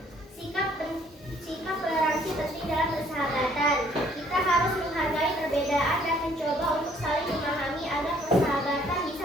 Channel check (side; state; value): both; normal; correlation 0.62